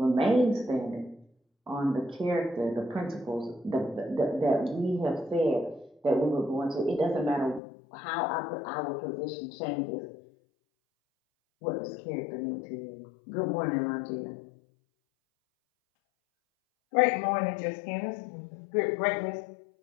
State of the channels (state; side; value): drops out; right; at 7.6 s